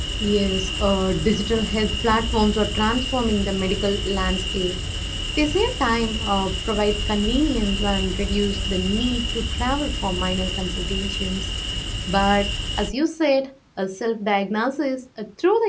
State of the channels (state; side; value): identical; both; correlation 1.00